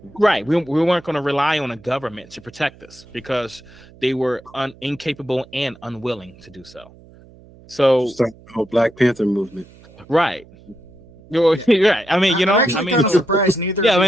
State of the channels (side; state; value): right; noise; hum, 24 dB below the sound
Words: right, we weren't going to rely on a government to protect us because they were incapable and unwilling to do so. So, Start the whole Black Panther movement. right, you're right. I mean, you know, I'm actually I mean, kind of surprised neither. Yeah, of I